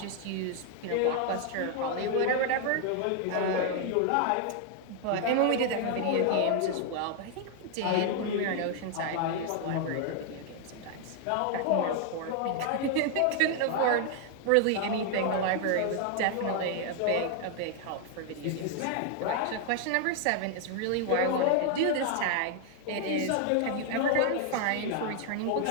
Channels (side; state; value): both; different; correlation 0.00